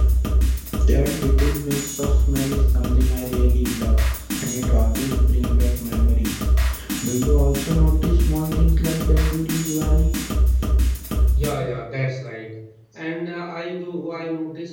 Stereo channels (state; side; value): identical; both; correlation 1.00